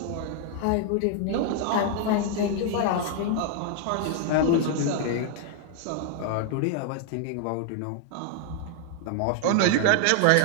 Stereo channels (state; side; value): different; both; correlation 0.00